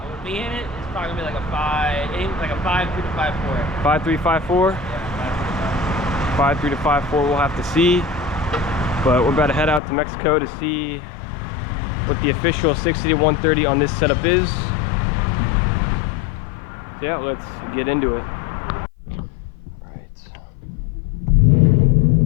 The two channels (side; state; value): right; drops out; at 9.8 s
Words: with me in it, it's probably gonna be like a 5.3 to 5.4. 5.3, 5.4? Yeah, 5.3 to 5.4, we'll have to see. But we're about to head out to Mexico to see what the official 60 to 130 on this setup is. So yeah, let's get into it.